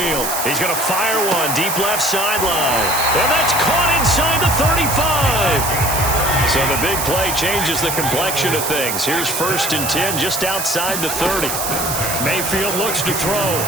He's going to fire one deep left sideline. And that's caught inside the 35. So the big play changes the complexion of things. Here's 1st and 10 just outside the 30. Mayfield looks to throw.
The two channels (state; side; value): noise; right; hiss, 3 dB below the sound